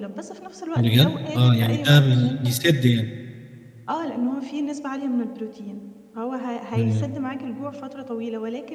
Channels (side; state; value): both; identical; correlation 1.00